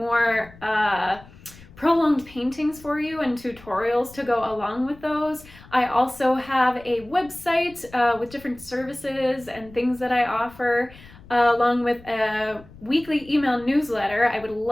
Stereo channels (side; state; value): left; noise; rumble, 22 dB below the sound